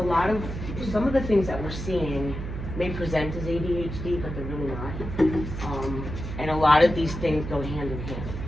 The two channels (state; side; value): noise; right; hum, 7 dB below the sound